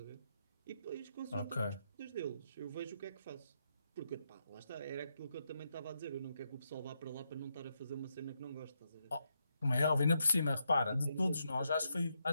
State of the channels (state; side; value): inverted; both; correlation -0.82